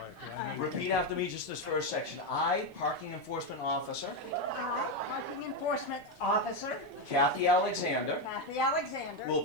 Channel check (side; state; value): right; late; 2.4 ms